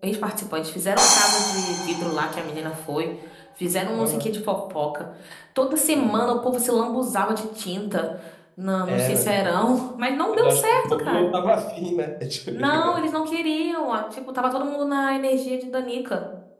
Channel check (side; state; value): both; identical; correlation 1.00